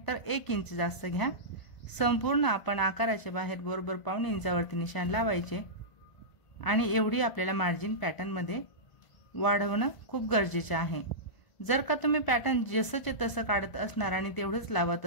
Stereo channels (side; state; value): right; late; 1.0 ms